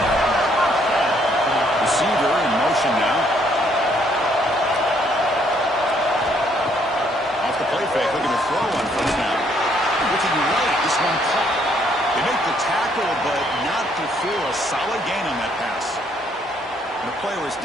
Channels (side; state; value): both; normal; correlation 0.68